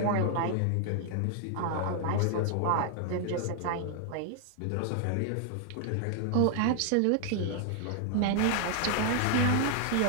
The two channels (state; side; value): different; both; correlation 0.00